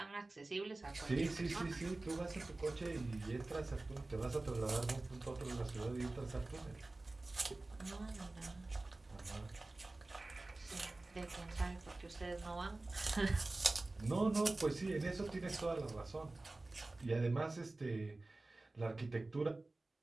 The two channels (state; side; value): quieter; left; 3.0 dB